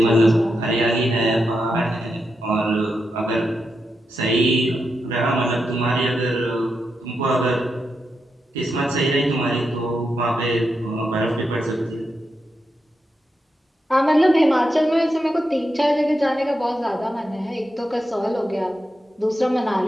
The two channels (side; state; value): both; normal; correlation 0.86